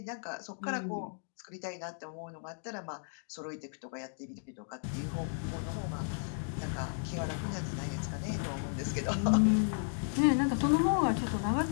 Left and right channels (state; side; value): silent; right; digital silence